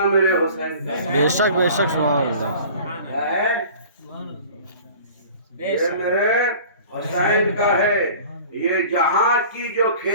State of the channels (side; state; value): both; inverted; correlation -0.44